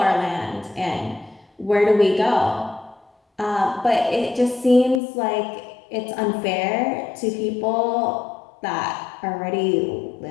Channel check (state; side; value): drops out; right; at 5.0 s